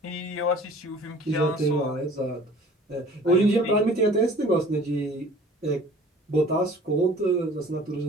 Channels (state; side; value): normal; both; correlation 0.48